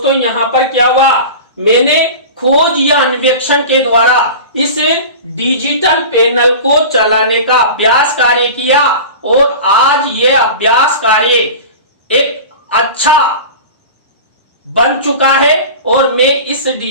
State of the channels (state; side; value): inverted; both; correlation -0.33